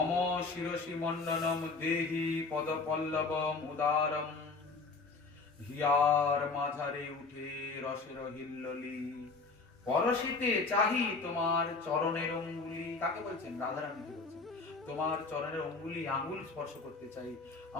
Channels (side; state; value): right; quieter; 4.0 dB